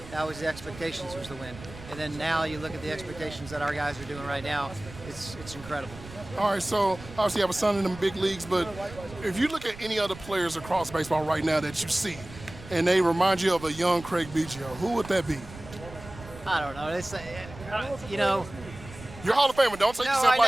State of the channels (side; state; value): right; noise; rumble, 16 dB below the sound